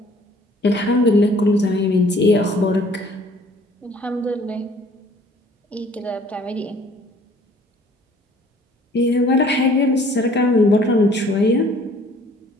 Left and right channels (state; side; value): normal; both; correlation 0.55